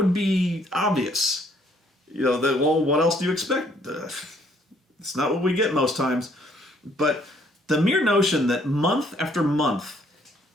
be obvious. What else do you expect? It's not what we get most times. But the mere notion that month after month,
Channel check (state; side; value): normal; both; correlation 0.65